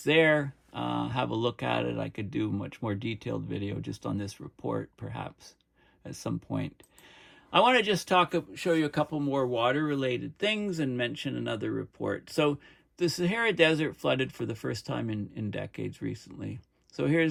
there. Have a look at it. I could do a much more detailed video just on this report, perhaps, at some point. I want to just show you a couple more water-related things and mention another report. So the Sahara Desert flooded for the first time in decades recently. So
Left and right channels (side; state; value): both; identical; correlation 1.00